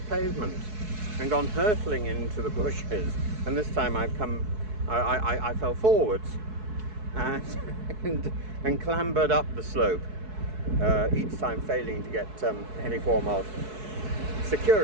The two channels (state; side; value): late; left; 4.7 ms